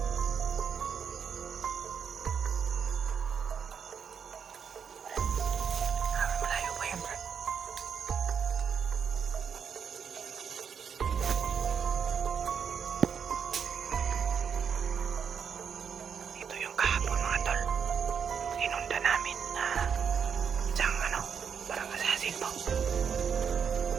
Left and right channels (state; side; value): quieter; left; 7.0 dB